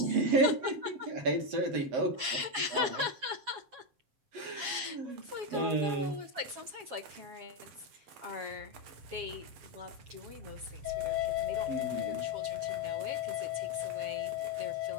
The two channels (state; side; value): late; left; 7.2 ms